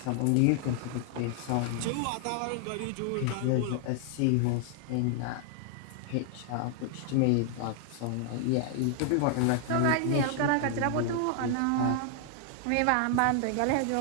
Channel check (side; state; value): both; different; correlation 0.00